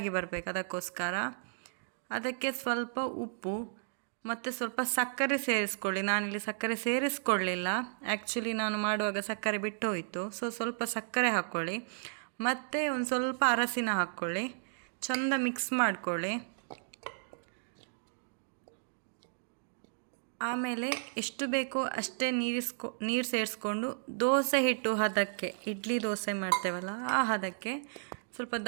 ಬರಬೇಕು. ಅದಕ್ಕೋಸ್ಕರ ಅದಕ್ಕೆ ಸ್ವಲ್ಪ ಉಪ್ಪು ಮತ್ತು ಸ್ವಲ್ಪ ಸಕ್ಕರೆ ಸೇರಿಸ್ಕೊಳ್ಳಿ. ನಾನಿಲ್ಲಿ ಸಕ್ಕರೆ ಸೇರಿಸ್ಕೊಳ್ಳಿಲ್ಲ, ಆ್ಯಕ್ಚುಲಿ ನಾನು ಮಾಡುವಾಗ ಸಕ್ಕರೆ ಬಿಟ್ಟು ಹೋಯಿತು. ಸ್ವಲ್ಪ ಸಕ್ಕರೆ ಹಾಕ್ಕೊಳ್ಳಿ ಮತ್ತು ಒಂದು ಸ್ವಲ್ಪ ಅರಸಿನ ಹಾಕ್ಕೊಳ್ಳಿ. ಚೆಂದ ಮಿಕ್ಸ್ ಮಾಡ್ಕೊಳ್ಳಿ. ಆಮೇಲೆ ಎಷ್ಟು ಬೇಕೋ ಅಷ್ಟೇ ನೀರು ಸೇರಿಸ್ಕೊಂಡು ದೋಸೆ ಹಿಟ್ಟು ಹದಕ್ಕೆ, ಇಡ್ಲಿ ದೋಸೆ ಮಾಡ್ತೇವಲ್ಲ ಆ ಹದಕ್ಕೆ ಸ್ವಲ್ಪ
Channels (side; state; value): left; silent; digital silence